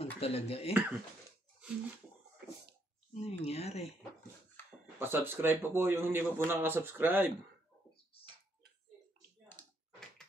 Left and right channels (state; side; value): normal; both; correlation 0.74